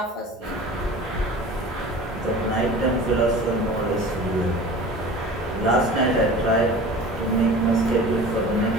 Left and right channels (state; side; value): normal; both; correlation 0.39